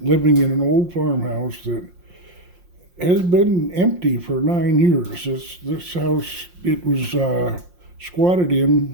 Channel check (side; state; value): left; late; 5.6 ms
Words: living in an old farmhouse that has been empty for 9 years. This house, it was squatted